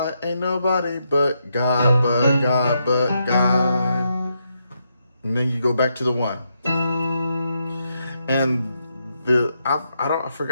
Ain't nobody but God, but God, but God. And then you go back to the 1. And I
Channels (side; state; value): both; inverted; correlation -0.81